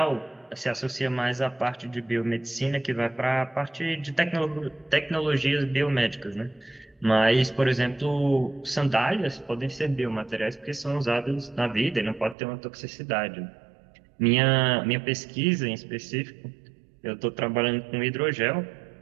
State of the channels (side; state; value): left; drops out; at 12.4 s